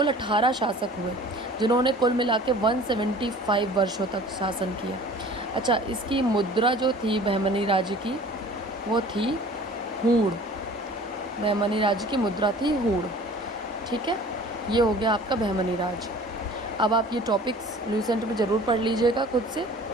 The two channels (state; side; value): normal; both; correlation 0.46